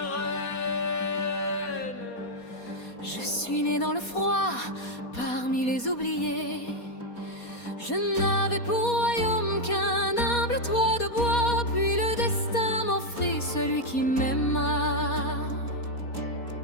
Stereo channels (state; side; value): late; right; 4.2 ms